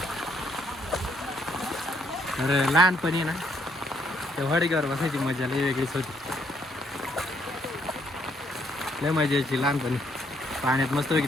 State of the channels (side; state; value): both; normal; correlation 0.71